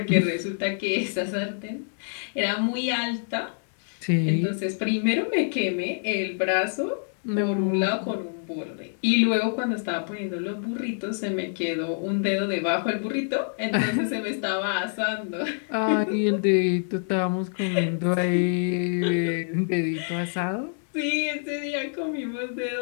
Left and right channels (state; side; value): silent; right; digital silence